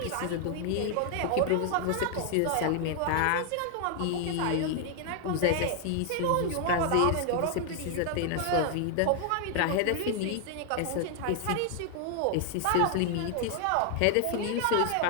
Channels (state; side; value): different; both; correlation 0.00